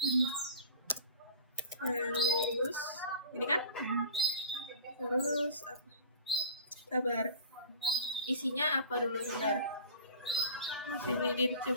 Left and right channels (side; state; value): both; inverted; correlation -0.40